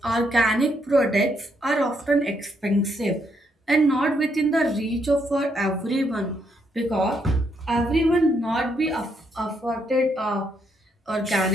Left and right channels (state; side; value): normal; both; correlation 0.75